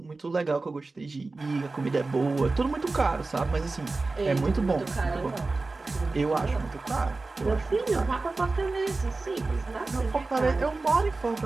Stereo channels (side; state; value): left; quieter; 3.5 dB